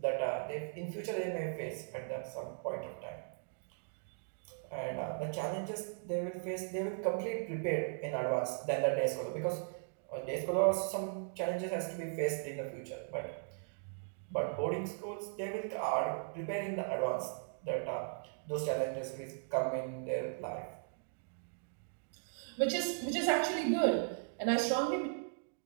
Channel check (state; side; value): silent; left; digital silence